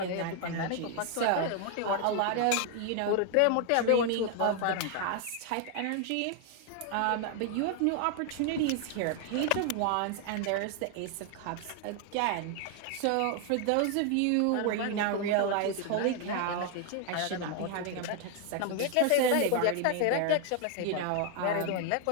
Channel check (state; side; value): different; both; correlation 0.00